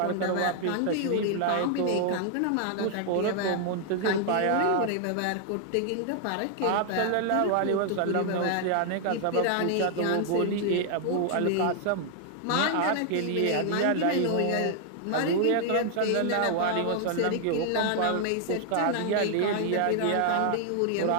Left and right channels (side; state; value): both; different; correlation 0.00